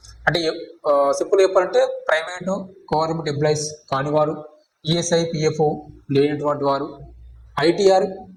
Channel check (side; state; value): both; identical; correlation 1.00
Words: అంటే సింపుల్ చెప్పాలంటే ప్రైవేటు గవర్నమెంట్ ఎంప్లాయీస్ కానివారు, ఈఎస్ఐ పిఎఫ్ లేనటువంటి వారు, ఐటీఆర్